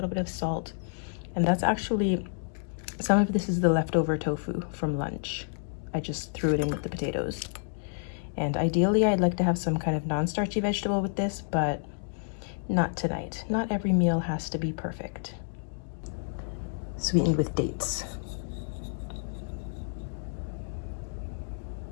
bit of salt. And that's actually, some of this is the leftover tofu from lunch. I just threw it in with the potatoes. And ideally, I'd like to have some kind of non-starchy vegetable with this, but not tonight. Not every meal has to be perfect. Sweetened with dates.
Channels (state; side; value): silent; right; digital silence